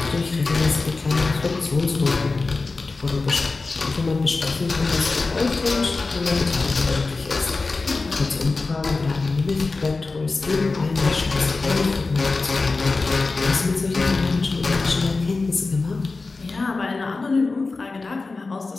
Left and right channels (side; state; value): right; quieter; 3.8 dB